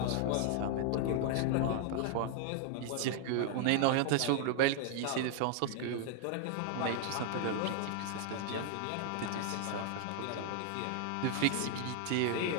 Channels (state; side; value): different; both; correlation 0.00